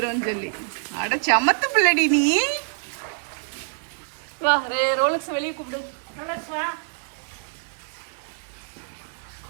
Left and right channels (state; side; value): silent; left; 61 dB below the other